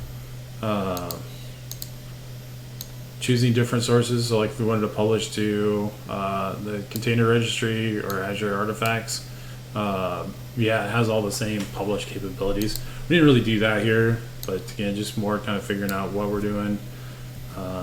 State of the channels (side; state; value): both; identical; correlation 1.00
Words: Choosing different sources, so like if we wanted to publish to the container registry or Azure artifacts, yeah, it has all the same publish capabilities. We didn't really do that here, but again, just more kind of figuring out what we're doing.